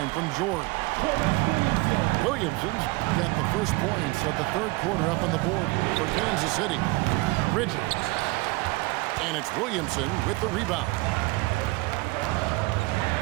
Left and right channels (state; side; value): quieter; left; 23.7 dB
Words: from George. Williamson's got the first points of the third quarter up on the board for Kansas City. Bridges. And it's Williamson with the rebound.